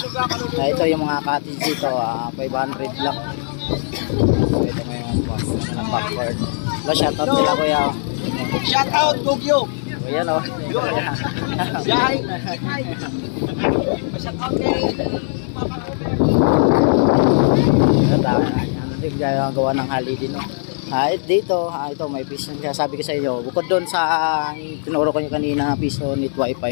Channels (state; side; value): silent; right; 64 dB below the other